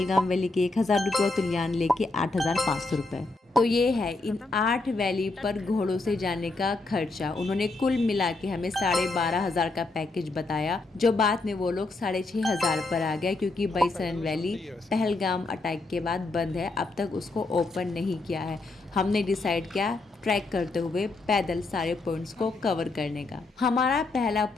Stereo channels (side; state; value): right; quieter; 3.3 dB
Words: वैली के 1000 रुपए, और तुलियान लेक के 8500 रुपए। तो ये है इन 8 वैली पर घोड़ों से जाने का खर्चा। उन्होंने कुल मिला के हमें 12,500 का पैकेज बताया, जो बाद में वो लोग 6,500 पर आ गया, क्योंकि बैसरन वैली पहलगाम अटैक के बाद बंद है, अब तक उसको ओपन नहीं किया है। हमने डिसाइड किया ट्रैक करते हुए पैदल सारे पॉइंट्स को कवर करने का। हमारा पहला